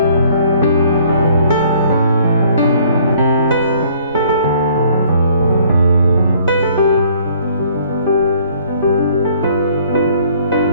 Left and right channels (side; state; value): both; inverted; correlation -0.59